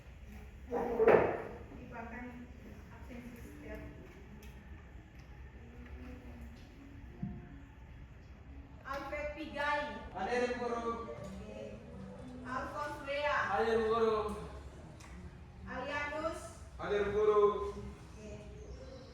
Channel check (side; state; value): both; identical; correlation 1.00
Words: Dibuatkan absensi setiap. Alfred Pigai. Hadir Bu Guru. Oke. Alphonse Lea. Hadir Bu Guru. Alianus. Hadir Bu Guru. Oke.